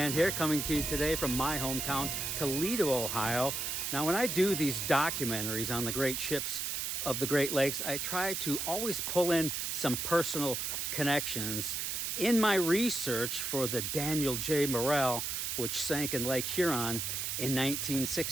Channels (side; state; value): right; noise; hiss, 2 dB below the sound